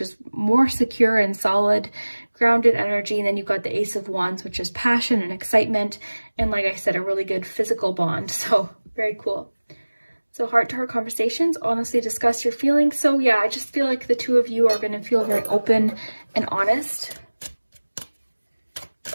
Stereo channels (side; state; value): both; inverted; correlation -1.00